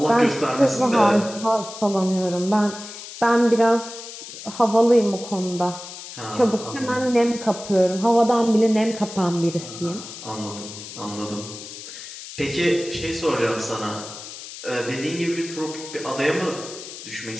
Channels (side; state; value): left; noise; hiss, 12 dB below the sound